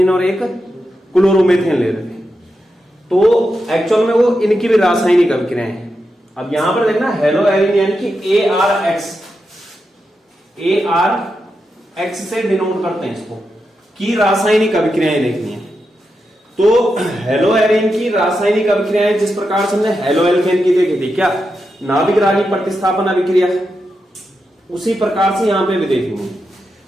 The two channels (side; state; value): both; normal; correlation 0.87